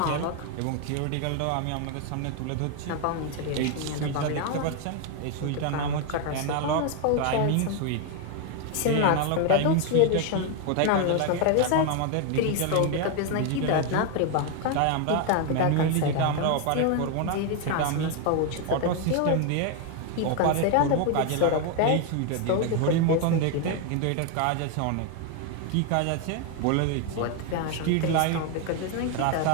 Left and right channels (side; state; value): both; different; correlation 0.01